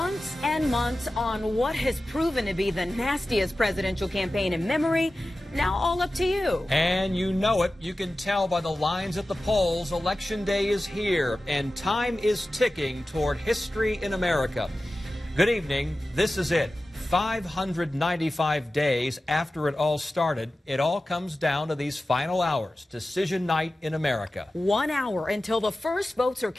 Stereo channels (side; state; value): both; normal; correlation 0.95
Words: and months on what has proven to be the nastiest presidential campaign in memory. Now all up to you. And you know it. You can tell by the lines at the polls. Election day is here, and time is ticking toward history in America. Good evening. This is it. 595 days after it all started, it all comes down to these final hours. Decision night in America. 1 hour until the first votes are